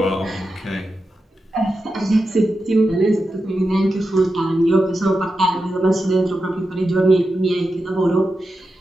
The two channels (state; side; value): normal; both; correlation 0.90